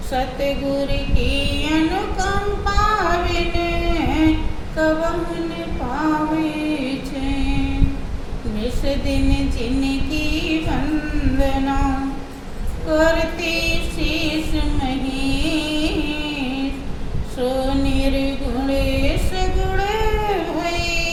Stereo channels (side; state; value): both; identical; correlation 1.00